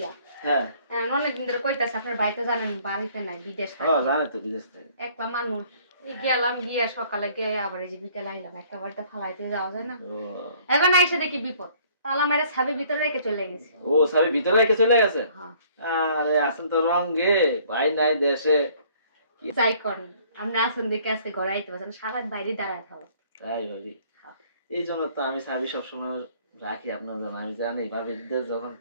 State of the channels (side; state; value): both; inverted; correlation -0.58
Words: হ্যাঁ অনেকদিন ধরে কইতাছে, আপনার ভাই তো জানেন বাড়িতে নাই, বিদেশ ও থাকে। জানে তো, বিদেশ থেকে। একটা মানুষ গেলাম, গিয়ে সকালে গিয়ে আবার এই যে বিকেল আইলাম, একেবারে তো ফালাইতে যাওয়া যায় না। ও এখন আইসে দেখি বিপদ, তালা মেরে ছাবি ভিতরে রেখে চলে গেছে। ও সবই ভিতরে রেখে চলে গেছে? হ্যাঁ, আরে আসেন তো রঙে, ভাই নাই দেশে। যাই করেন, আপনি আসুন দেখে আজকে ঘরে আইতে পারছেন, সারা বাইরে দাঁড়ায় থাকো। তাই ভাবি, এই জন্য তো আমি সাবি সবসময় রাখি আপনার জন্য। আমি জানি ভাবিদের যখন